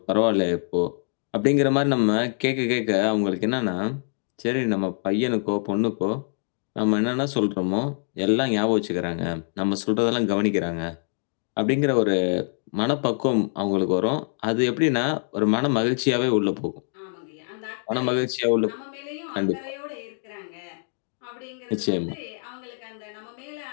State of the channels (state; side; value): silent; right; 62 dB below the other